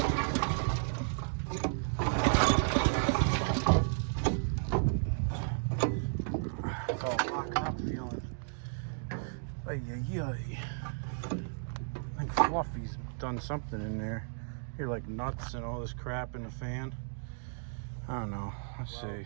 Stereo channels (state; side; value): silent; left; digital silence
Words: It's all locked up feeling. Ay. I think Fluffy's done something in there. Here, like nuts and all this crap in the fan. I don't know. Let's see.